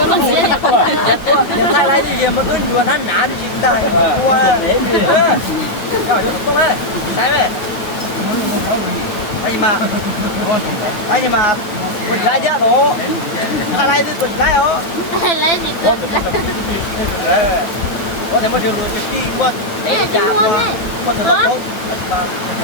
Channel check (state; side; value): late; right; 9.5 ms